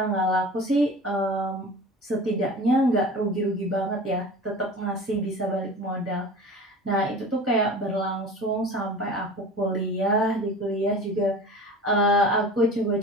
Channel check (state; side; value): normal; both; correlation 0.37